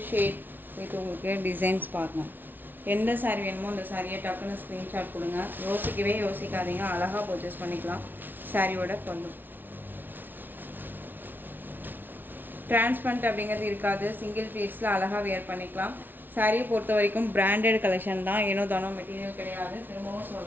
ஷேட் வித் உங்களுக்கு டிசைன்ஸ் பார்க்கணும். எந்த சாரீ வேணுமோ அந்த சாரியை டக்குன்னு ஸ்க்ரீன்ஷாட் கொடுங்க, யோசிக்கவே யோசிக்காதீங்க, அழகாக பர்ச்சேஸ் பண்ணிக்கலாம். சாரியோட பல்லு டிரான்ஸ்பரண்ட் அப்படிங்கிறது இருக்காது. சிங்கிள் பீஸில் அழகாக வேர் பண்ணிக்கலாம். சாரியை பொறுத்த வரைக்கும் பிராண்டட் கலெக்ஷன் தான், ஏனோ தானோ மெட்டீரியல் கிடையாது. திரும்பவும்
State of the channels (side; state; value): left; late; 0.091 ms